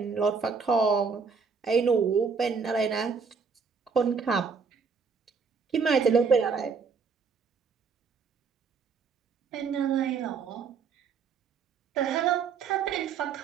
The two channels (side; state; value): left; quieter; 5.5 dB